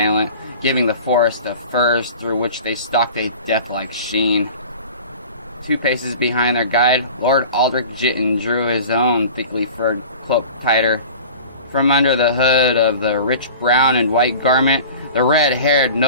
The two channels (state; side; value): inverted; both; correlation -0.40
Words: giving the forest of firs through which they stalked a death-like sheen. 2 paces behind their guide, Lord Aldrich Jitten drew his own thickly furred cloak tighter. From under the hood of the rich brown and white garment, the red-haired